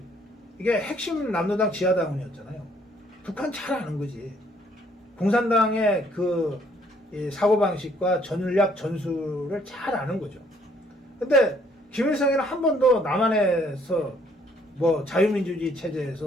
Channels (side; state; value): both; normal; correlation 0.64